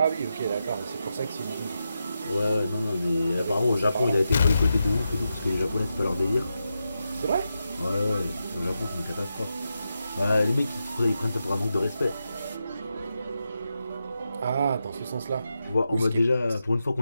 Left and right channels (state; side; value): inverted; both; correlation -0.87